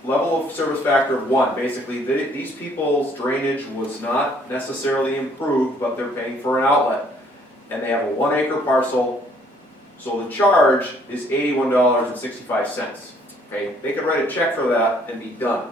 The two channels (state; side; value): normal; both; correlation 0.62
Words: level of service factor of 1. Basically, these people's drainage was not necessarily improved, but they're paying for an outlet. And they have a 1 acre parcel, so the charge is $81.65. Okay, they could write a check for that and be done.